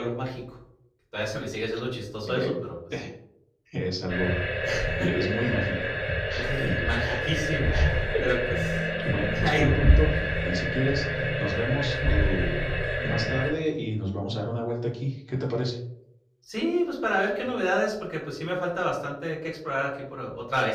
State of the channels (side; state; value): both; identical; correlation 1.00